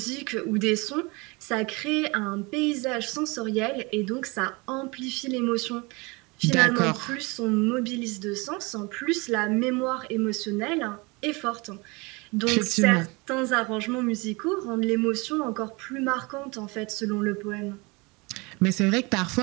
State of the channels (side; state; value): left; quieter; 26.6 dB